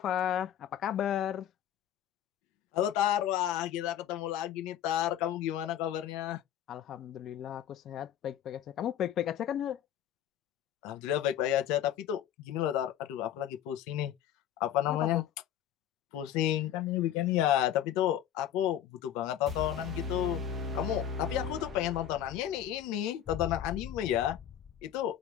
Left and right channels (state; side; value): quieter; right; 10.7 dB